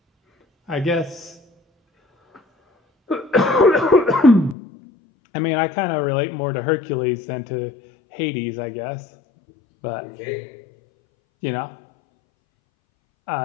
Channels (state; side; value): drops out; right; at 4.5 s